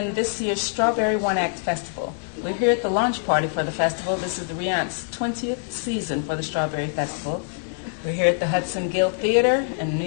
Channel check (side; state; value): right; silent; digital silence